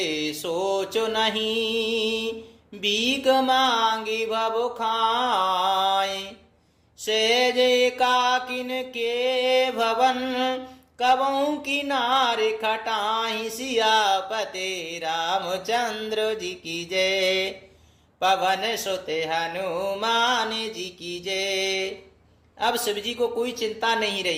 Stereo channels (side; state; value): both; identical; correlation 1.00